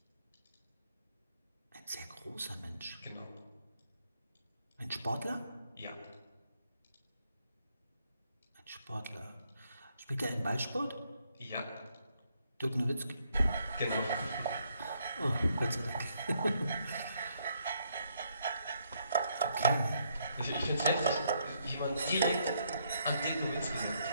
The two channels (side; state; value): both; inverted; correlation -0.73